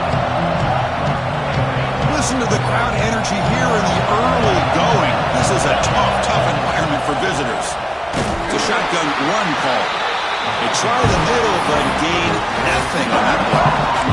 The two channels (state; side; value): identical; both; correlation 1.00